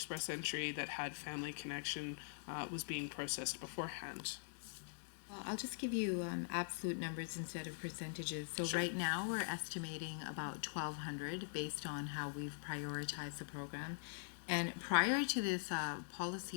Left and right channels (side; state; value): right; silent; digital silence